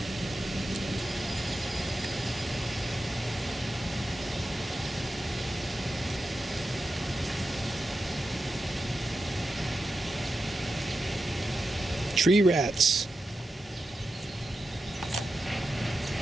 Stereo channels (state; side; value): normal; both; correlation 0.90